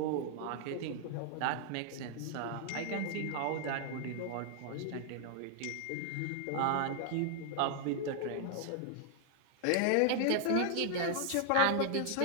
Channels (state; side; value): different; both; correlation 0.00